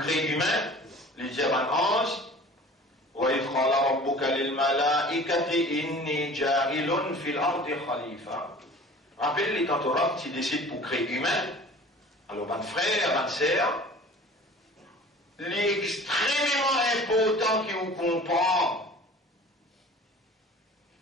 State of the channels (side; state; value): both; normal; correlation 0.44